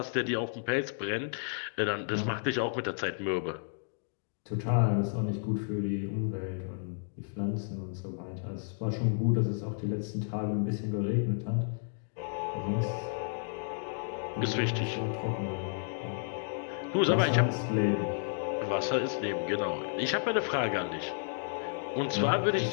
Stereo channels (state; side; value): silent; right; digital silence